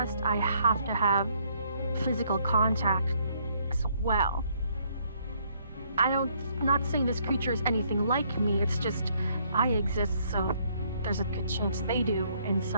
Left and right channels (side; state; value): both; inverted; correlation -0.68